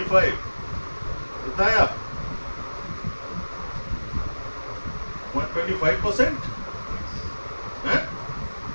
कितना आया? 125% है. एक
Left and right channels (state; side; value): inverted; both; correlation -1.00